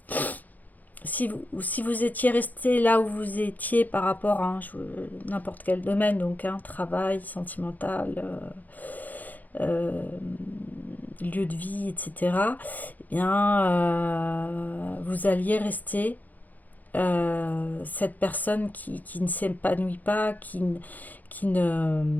si vous étiez resté là où vous étiez par rapport à n'importe quel domaine, donc travail, sentimental, lieu de vie, etc., eh bien, vous alliez rester cette personne qui ne s'épanouit pas, qui ne,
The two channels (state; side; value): late; right; 0.082 ms